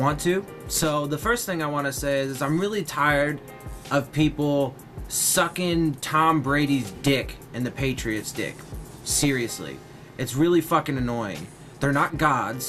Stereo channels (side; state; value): both; identical; correlation 1.00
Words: to. So the first thing I want to say is I'm really tired of people sucking Tom Brady's dick and the Patriots' dick. Seriously. It's really fucking annoying. They're not